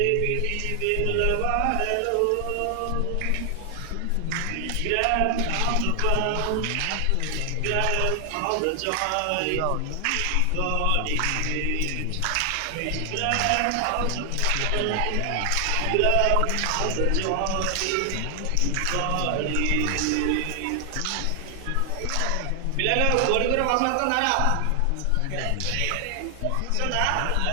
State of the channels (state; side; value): different; both; correlation 0.00